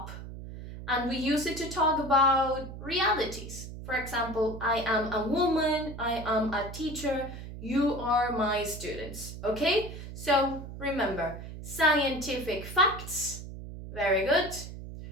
and we use it to talk about realities. For example, I am a woman, I am a teacher, you are my students, okay? So remember, scientific facts, very good,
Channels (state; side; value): noise; right; hum, 11 dB below the sound